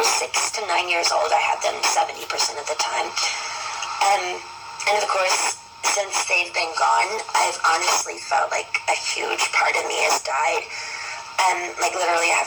6 to 9 years old, I had them 70% of the time. And of course, since they've been gone, I've honestly felt like a huge part of me has died. Like literally I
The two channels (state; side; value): identical; both; correlation 1.00